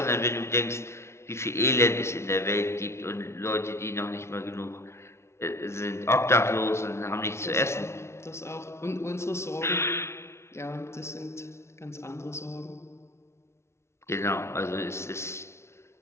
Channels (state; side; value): late; right; 0.13 ms